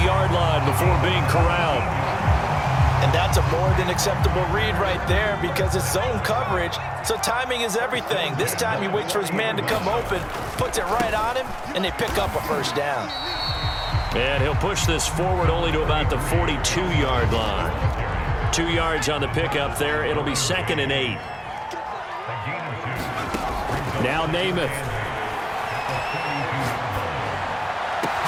line before being corralled. And That's a more than acceptable read right there because it's zone coverage, so timing is everything. This time he waits for his man to come open, puts it right on him, and they pick up a first down. And he'll push this forward only to about the 42-yard line. 2 yards on the pickup there. It'll be 2nd and 8. Now Namath.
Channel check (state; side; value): identical; both; correlation 1.00